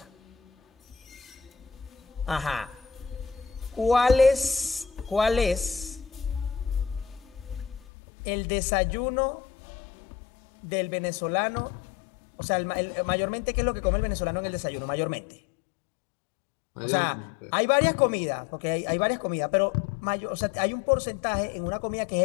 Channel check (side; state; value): right; drops out; at 7.9 s